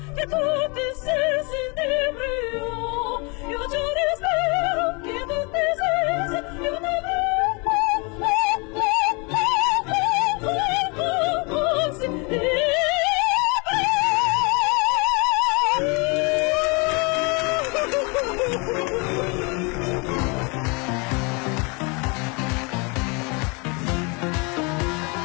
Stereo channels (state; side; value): quieter; right; 30.8 dB